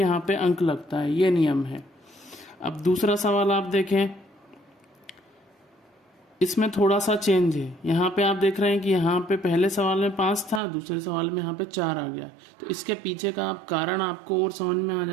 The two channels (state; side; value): drops out; left; at 10.6 s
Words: पे अंक लगता है, ये नियम है। अब दूसरा सवाल आप देखें, इसमें थोड़ा सा चेंज है। यहाँ पे आप देख रहे हैं कि यहाँ पे पहले सवाल में 5 था, दूसरे सवाल में यहाँ पे 4 आ गया। तो इसके पीछे का कारण आपको और समझ में आ